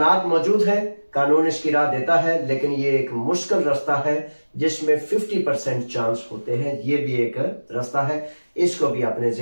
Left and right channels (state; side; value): inverted; both; correlation -1.00